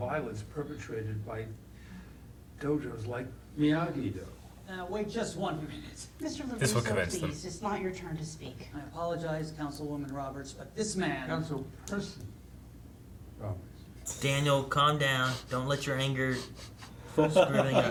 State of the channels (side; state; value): both; identical; correlation 1.00